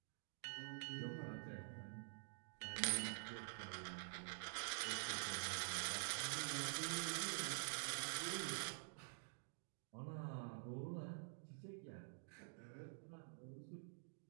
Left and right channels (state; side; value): silent; left; digital silence